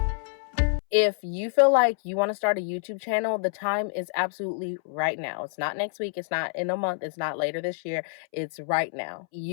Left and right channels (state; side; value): silent; right; 60 dB below the other